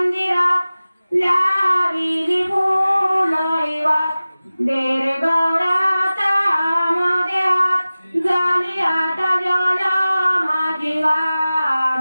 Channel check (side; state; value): both; inverted; correlation -0.97